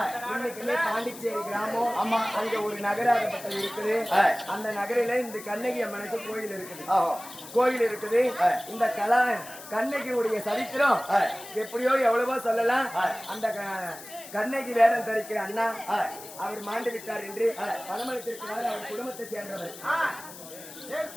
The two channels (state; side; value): noise; left; hiss, 15 dB below the sound